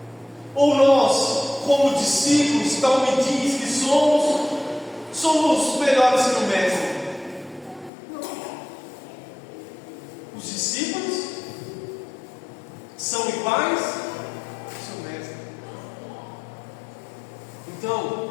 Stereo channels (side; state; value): right; drops out; at 7.9 s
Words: Ou nós, como discípulos, tal me diz que somos melhores que o Mestre. Os discípulos são iguais ao seu Mestre.